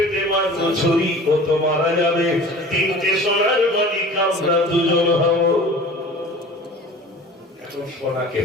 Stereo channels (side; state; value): both; normal; correlation 0.42